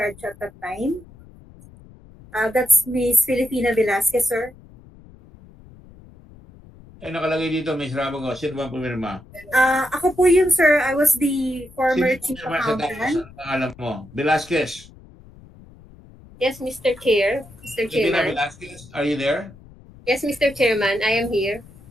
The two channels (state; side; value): noise; left; rumble, 22 dB below the sound